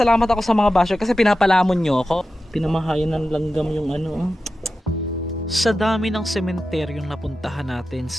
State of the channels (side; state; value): both; normal; correlation 0.92